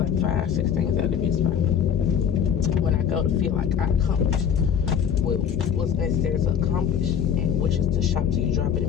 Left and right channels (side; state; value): right; quieter; 8.1 dB